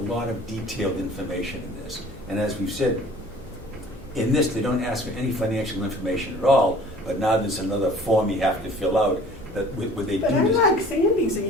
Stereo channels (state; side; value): normal; both; correlation 0.48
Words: of detailed information in this. And as we've said, in this, they don't ask for any financial information at all, but now there's another form you have to fill out that would they do But I this. like Sandy's